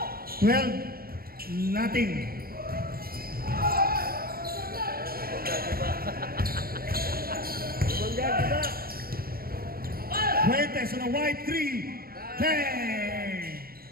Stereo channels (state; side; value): late; left; 0.43 ms